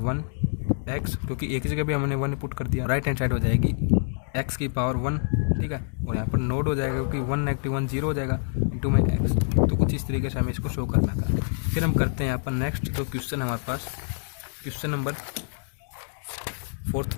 क्योंकि ए की जगह भी हमने 1 पुट कर दिया। राइट हैंड साइड हो जाएगी x की पावर 1। ठीक है, और यहाँ पर नोड हो जाएगा क्योंकि 1-1 0 हो जाएगा इंटू में x। तो कुछ इस तरीके से हमें इसको शो करना था। फिर हम करते हैं यहाँ पर नेक्स्ट जो क्वेश्चन हमारे पास, क्वेश्चन नंबर 4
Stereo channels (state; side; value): silent; right; digital silence